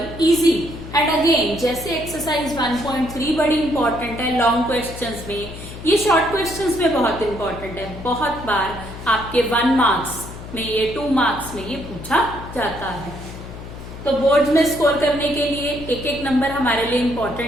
easy and again जैसे एक्सरसाइज 1.3 बड़ी इंपॉर्टेंट है लॉन्ग क्वेश्चंस में, ये शॉर्ट क्वेश्चंस में बहुत इंपॉर्टेंट है। बहुत बार आपके 1 मार्क्स में, ये 2 मार्क्स में ये पूछा जाता है। तो बोर्ड में स्कोर करने के लिए एक एक नंबर हमारे लिए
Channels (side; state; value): left; noise; hum, 12 dB below the sound